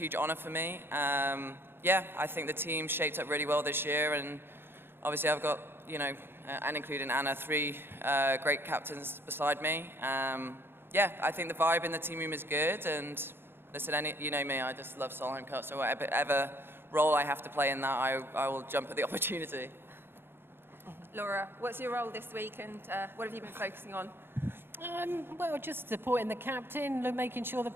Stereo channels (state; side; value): late; left; 0.11 ms